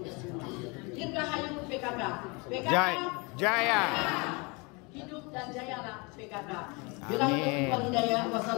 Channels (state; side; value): quieter; right; 28.9 dB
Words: semua. Dirgahayu PKK. PKK Jaya. Hidup dan jayalah PKK.